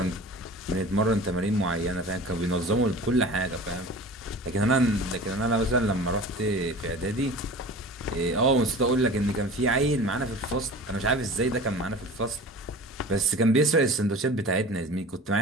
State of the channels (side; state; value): both; normal; correlation 0.38